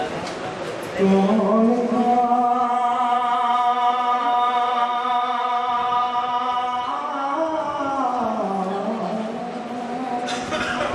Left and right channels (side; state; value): both; identical; correlation 1.00